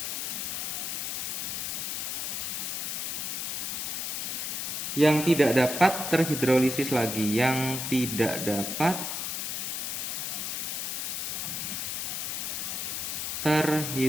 yang tidak dapat terhidrolisis lagi, yang tidak dapat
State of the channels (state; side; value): noise; left; hiss, 2 dB below the sound